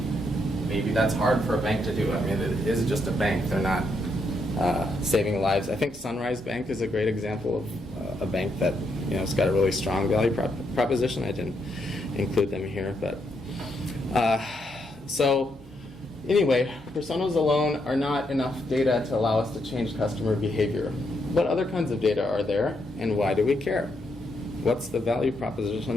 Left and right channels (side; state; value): both; normal; correlation 0.78